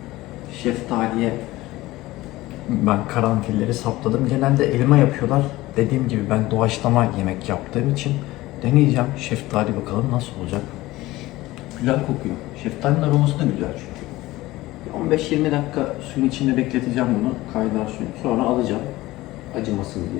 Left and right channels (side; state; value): right; quieter; 18.2 dB